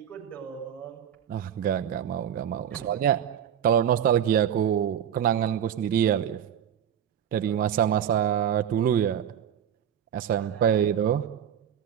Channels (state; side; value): quieter; left; 9.3 dB